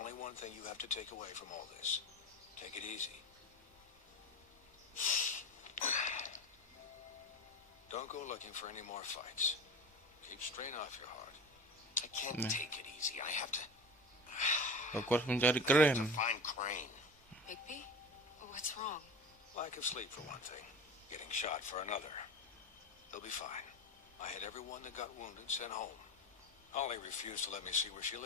one thing you have to take away from all this. Take it easy. Don't go looking for any more fights. Keep strain off your heart. I can't take it easy. I have to Aku harus mencari Keren. find Crane. Bigby? What's wrong? Lack of sleep for one thing. Getting shot for another. They'll be fine. I had everyone that got wounded sent home. Holly refused to let me see where she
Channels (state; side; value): normal; both; correlation 0.31